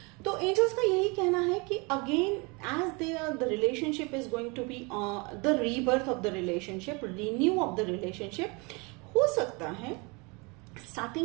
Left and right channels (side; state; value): left; quieter; 28.9 dB